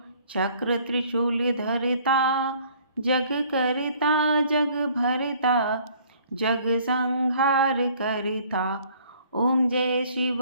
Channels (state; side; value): inverted; both; correlation -0.57